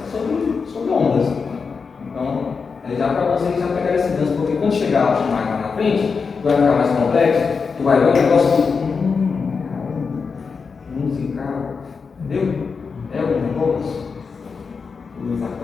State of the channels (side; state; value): right; quieter; 5.2 dB